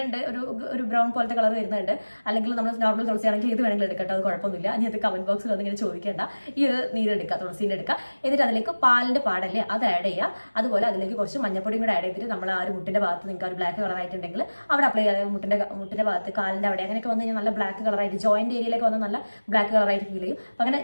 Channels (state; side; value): inverted; both; correlation -1.00